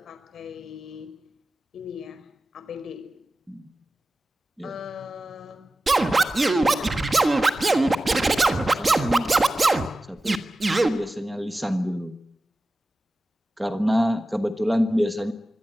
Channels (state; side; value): normal; both; correlation 0.95